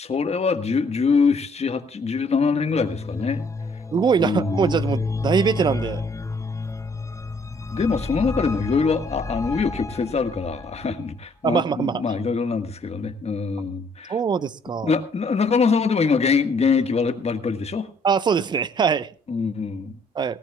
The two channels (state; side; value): normal; both; correlation 0.65